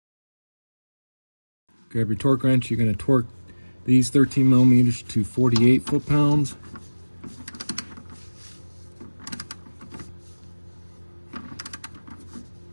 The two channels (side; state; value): both; inverted; correlation -1.00